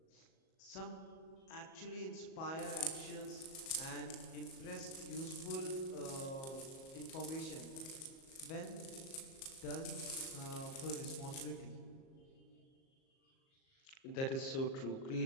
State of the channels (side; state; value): right; late; 37 ms